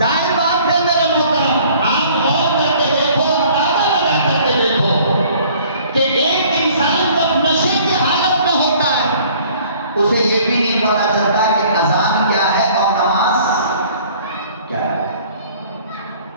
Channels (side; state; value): both; inverted; correlation -0.54